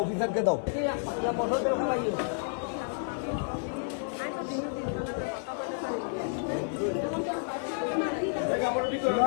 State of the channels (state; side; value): silent; right; digital silence